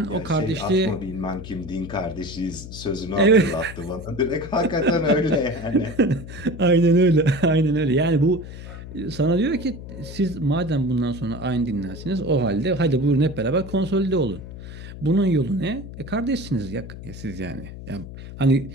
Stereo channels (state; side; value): noise; left; hum, 12 dB below the sound